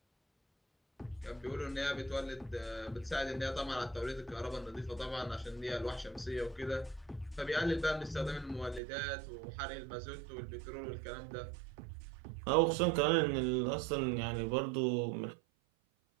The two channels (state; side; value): drops out; left; at 8.8 s